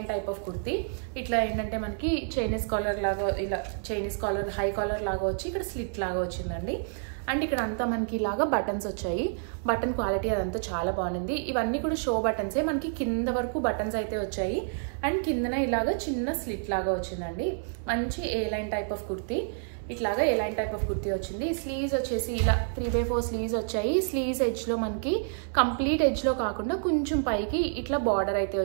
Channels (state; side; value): silent; left; digital silence